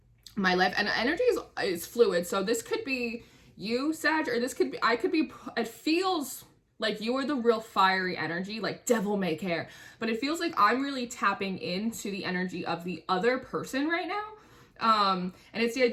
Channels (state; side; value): identical; both; correlation 1.00